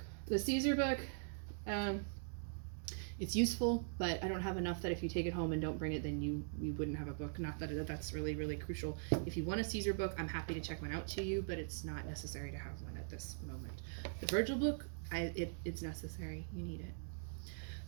The Caesar book, it's useful, but I don't have enough that if you take it home and don't bring it, then you wouldn't have a book. Not that that's really, really crucial. If you want a Caesar book, I'm happy to check one out to you, but it's not necessary to have one at this moment. The Virgil book, it's necessary. You need it.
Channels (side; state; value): left; silent; digital silence